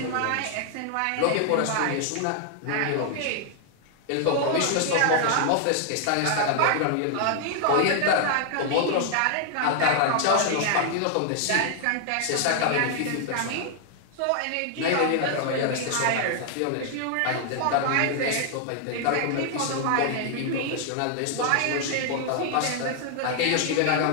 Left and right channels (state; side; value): different; both; correlation 0.00